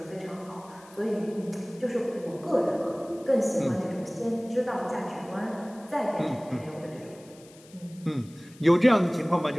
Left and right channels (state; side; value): noise; left; hiss, 24 dB below the sound